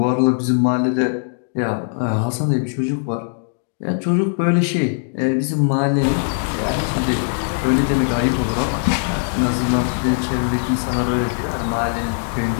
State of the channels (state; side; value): silent; right; digital silence